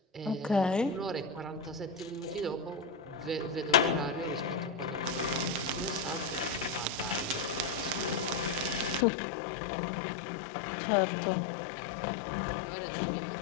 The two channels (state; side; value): drops out; right; at 9.1 s